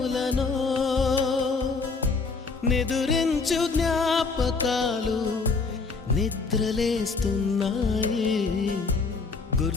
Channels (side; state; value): right; quieter; 4.4 dB